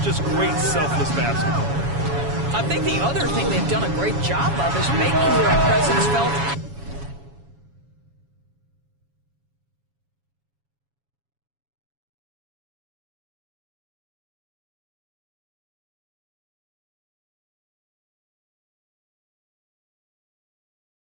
Just great selfless basketball. I think the other thing they've done a great job of is making their presence felt.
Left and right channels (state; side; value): late; left; 7.2 ms